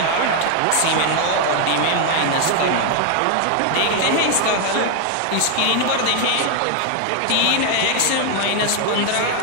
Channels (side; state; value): both; different; correlation 0.01